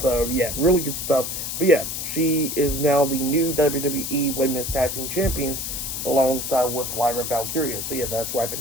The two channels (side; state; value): left; noise; hiss, 4 dB below the sound